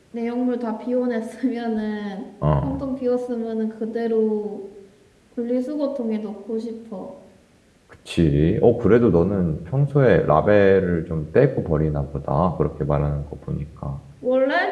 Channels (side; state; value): both; identical; correlation 1.00